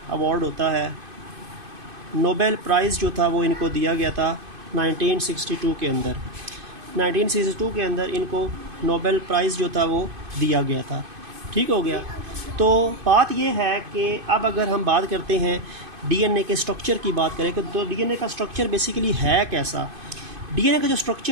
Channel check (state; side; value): late; left; 2.5 ms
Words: अवार्ड होता है, नोबेल प्राइज़ जो था वो इनको दिया गया था 1962 के अंदर। 1962 के अंदर इनको नोबेल प्राइज़ जो था वो दिया गया था, ठीक हो गया। तो बात ये है कि अब अगर हम बात करते हैं DNA के स्ट्रक्चर की बात करें तो DNA का स्ट्रक्चर बेसिकली है कैसा। DNA का जो